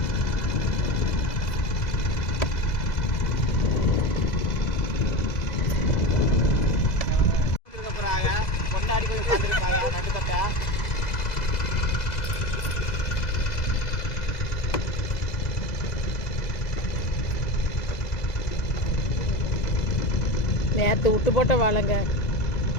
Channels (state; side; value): late; right; 2.0 ms